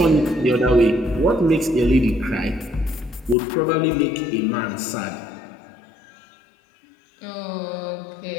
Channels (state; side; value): drops out; right; at 3.4 s